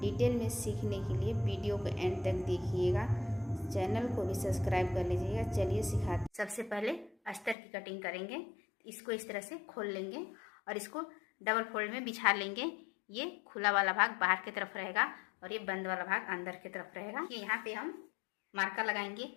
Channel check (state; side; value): drops out; right; at 7.6 s